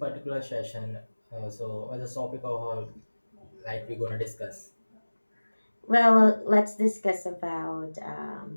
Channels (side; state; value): both; inverted; correlation -1.00